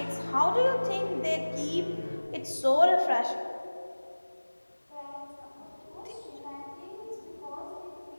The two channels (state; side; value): inverted; both; correlation -1.00